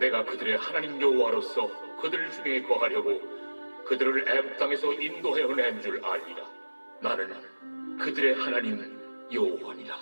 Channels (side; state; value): both; inverted; correlation -1.00